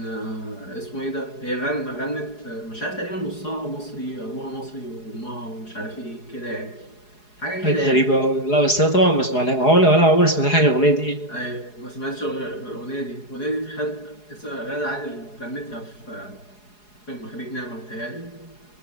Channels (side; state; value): right; late; 4.8 ms